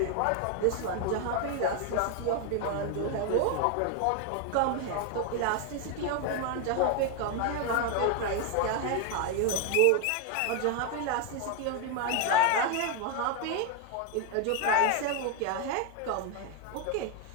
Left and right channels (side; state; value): both; different; correlation 0.01